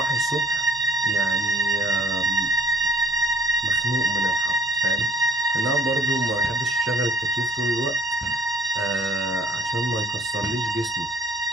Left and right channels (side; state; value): both; normal; correlation 0.55